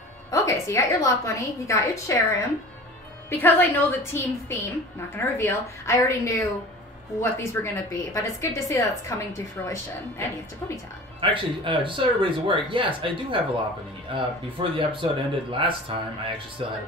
Okay, so you got your Lopunny, you got your Cherim. Because I know the team theme, not going to reveal, I already knew what these were going to be. But it's good to see that it's coming to fruition. And you have to Ponyta. Actually, just so everybody's aware, yes, I do have a Lopunny. Before the episode ended last time, I actually still had a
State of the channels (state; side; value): normal; both; correlation 0.39